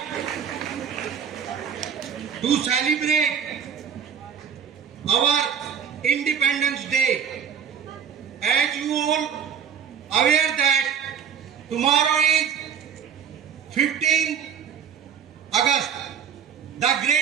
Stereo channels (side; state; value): left; quieter; 7.7 dB